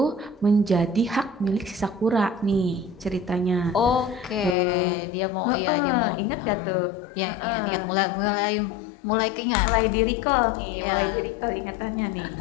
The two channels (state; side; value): drops out; right; at 4.5 s